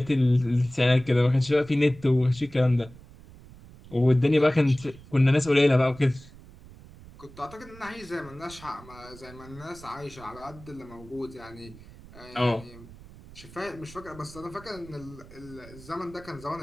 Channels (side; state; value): right; noise; rumble, 20 dB below the sound